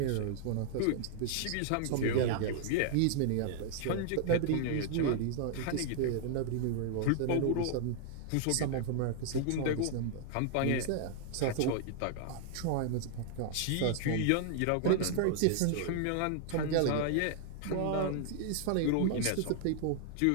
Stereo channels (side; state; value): both; different; correlation 0.00